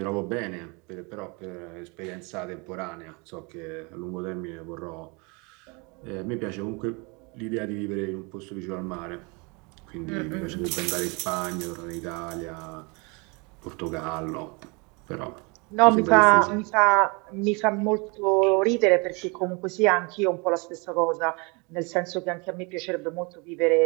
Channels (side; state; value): left; quieter; 30.0 dB